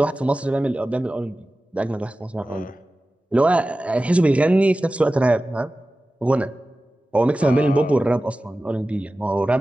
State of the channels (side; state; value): both; normal; correlation 0.96